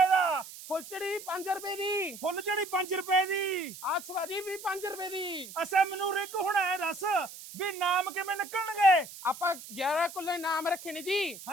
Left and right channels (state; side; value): noise; right; hiss, 14 dB below the sound